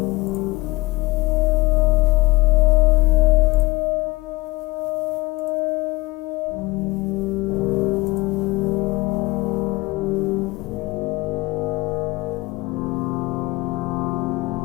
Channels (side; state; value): right; quieter; 21.7 dB